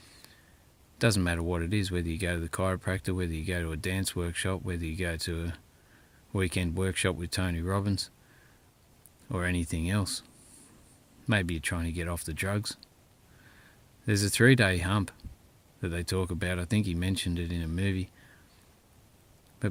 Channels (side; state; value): both; identical; correlation 1.00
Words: doesn't matter what it is, whether you go to the chiropractor, whether you go to a dance workshop, whether you go to a weekend workshop with Tony Robbins, or anything else. Maybe you're trying to get off the drugs. There's a 3-day hump that they talk about. I think he mentioned it in a movie.